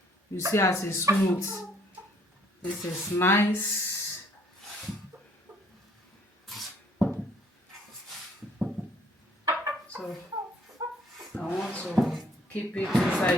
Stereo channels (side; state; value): both; normal; correlation 0.62